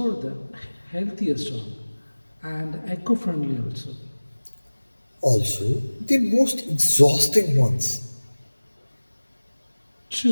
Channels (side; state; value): both; inverted; correlation -1.00